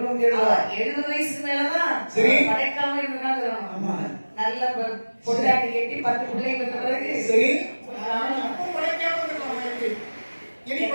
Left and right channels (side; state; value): both; inverted; correlation -1.00